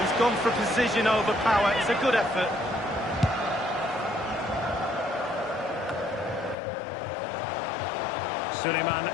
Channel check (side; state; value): right; drops out; at 6.6 s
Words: gone for precision over power. It's a good effort. Suleiman